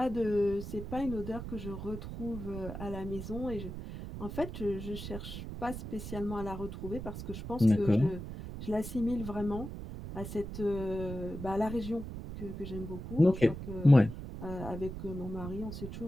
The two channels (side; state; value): right; noise; rumble, 8 dB below the sound